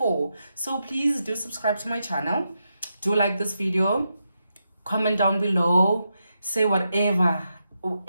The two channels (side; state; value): both; inverted; correlation -0.85